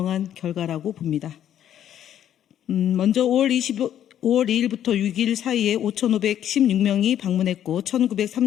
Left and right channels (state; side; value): quieter; right; 10.6 dB